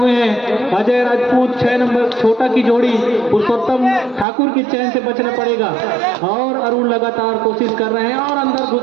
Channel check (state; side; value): drops out; left; at 4.2 s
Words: हैं अजय राजपूत। 6 नंबर छोटा की जोड़ी पुरुषोत्तम ठाकुर की चैन से बचना पड़ेगा और अरुण लगातार कोशिश कर रहे हैं और अंदर